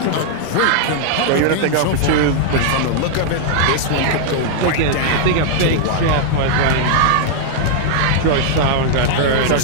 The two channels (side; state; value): both; different; correlation -0.01